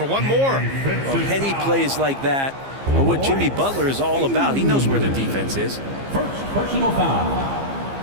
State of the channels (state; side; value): late; left; 15 ms